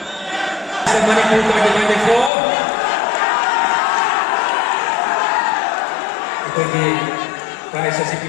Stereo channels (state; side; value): drops out; right; at 2.3 s